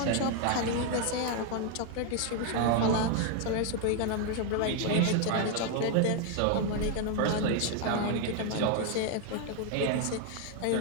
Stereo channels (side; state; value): both; different; correlation 0.01